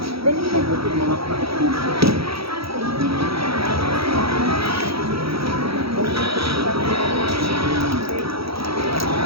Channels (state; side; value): late; left; 0.76 ms